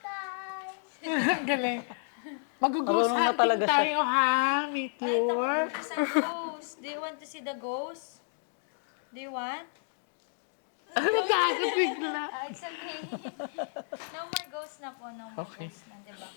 Ang galing. Mag-ghost Marunong na hunting talaga siya. tayo ha, Ay, Meteor. tapos ang ghost. Do you want to see the ghost? Do you want? Ano tayo bigla? It's okay. No more ghost na po. No more Okay. ghost na, diba?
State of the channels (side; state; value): right; silent; digital silence